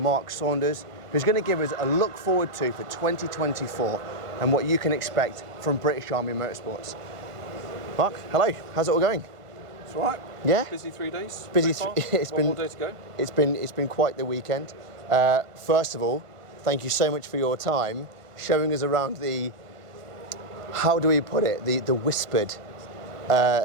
Saunders, who's going to give us a look forward to for 2024 and what you can expect from British Army Motorsports. Mark, hello, how's it all going? It's all right. Yeah? Busy 3 days. Busy. It's been 1 more day to go. It's been quite the weekend. First of all, thank you so much for your time showing us around the, how do we put it, the whispered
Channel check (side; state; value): left; late; 1.5 ms